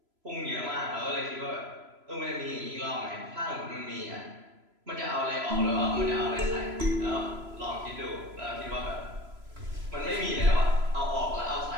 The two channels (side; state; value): left; late; 3.0 ms